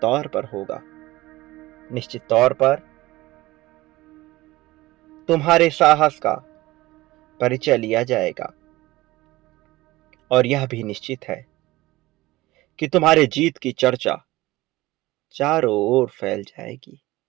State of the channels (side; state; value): left; quieter; 18.8 dB